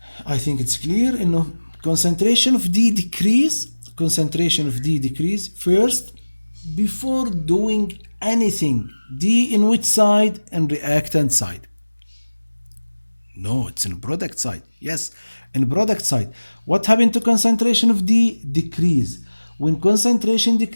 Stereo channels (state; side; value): inverted; both; correlation -1.00